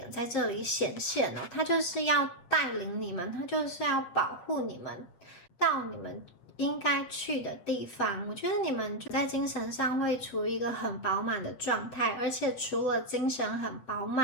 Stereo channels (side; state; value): right; late; 8.0 ms